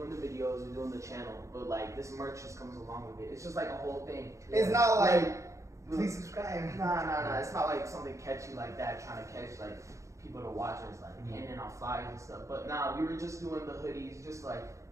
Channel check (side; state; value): left; late; 0.15 ms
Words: the videos, we're doing the channel, but like this merch just comes along with it. It's just like a whole thing. It's not like, please subscribe. Nah. It's not like something catchy like that, trying to catch like people to watch us, like handing out flyers and stuff. But nah, we were just doing the hoodies, just like